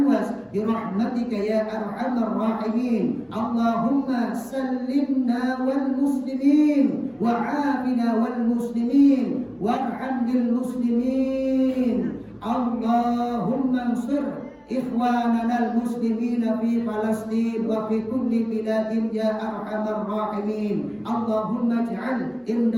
bi rahmatika ya arhamar rahimin. Allahumma sallimna wal muslimin wa 'afina wal muslimin warham lil muslimin. Allahumma ansur إخواننا المسلمين في فلسطين وفي كل بلاد يا أرحم الراحمين. اللهم اجعل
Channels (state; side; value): identical; both; correlation 1.00